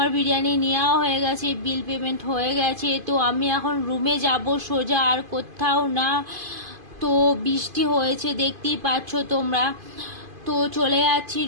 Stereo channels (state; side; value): late; left; 2.5 ms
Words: বিরিয়ানি নেওয়া হয়ে গেছে, বিল পেমেন্ট হয়ে গেছে। তো আমি এখন রুমে যাব সোজা, আর কোথাও না। তো বৃষ্টি হয়েছে, দেখতেই পাচ্ছ তোমরা। তো চলে যাচ্ছি